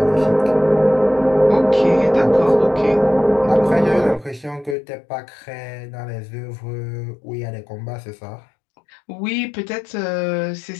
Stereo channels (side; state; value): right; drops out; at 4.8 s